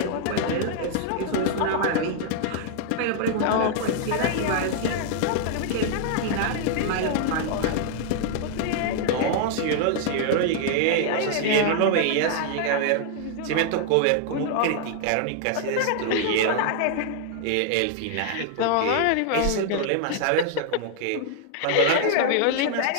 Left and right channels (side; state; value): both; different; correlation 0.00